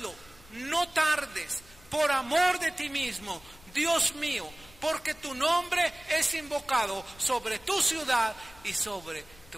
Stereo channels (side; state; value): left; noise; rumble, 24 dB below the sound